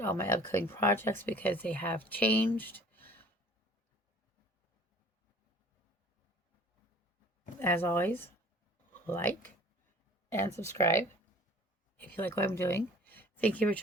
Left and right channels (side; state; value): both; normal; correlation 0.48